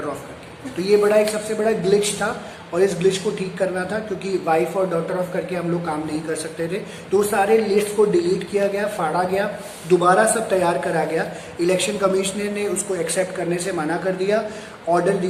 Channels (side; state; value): both; identical; correlation 1.00